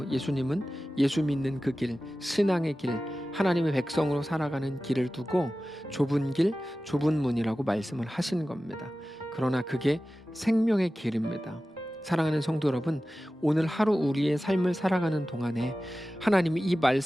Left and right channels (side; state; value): both; normal; correlation 0.95